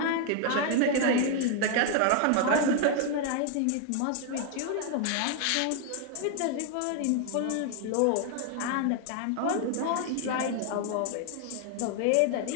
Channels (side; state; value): both; different; correlation 0.00